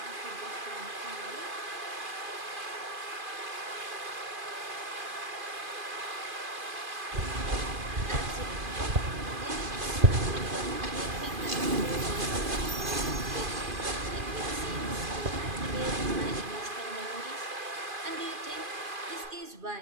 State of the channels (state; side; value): late; left; 2.4 ms